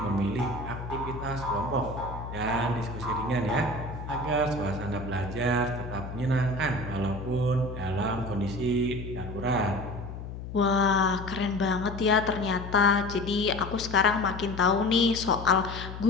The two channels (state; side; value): noise; left; hum, 9 dB below the sound